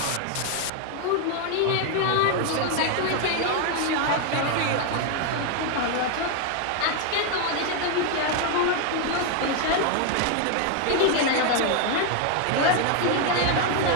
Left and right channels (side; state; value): both; different; correlation 0.01